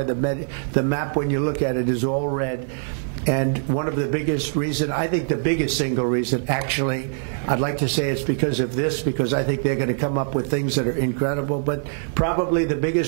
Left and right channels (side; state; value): left; silent; digital silence